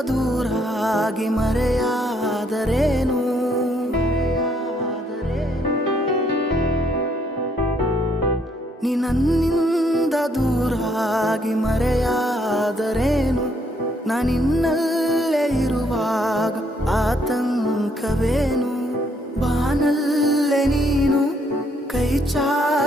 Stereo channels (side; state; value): both; normal; correlation 0.70